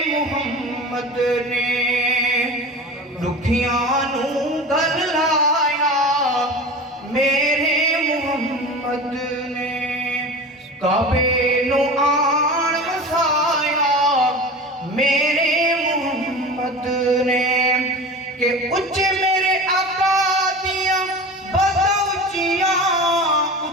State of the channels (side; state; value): both; normal; correlation 0.32